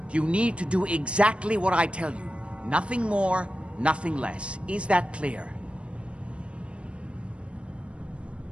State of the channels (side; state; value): left; late; 0.059 ms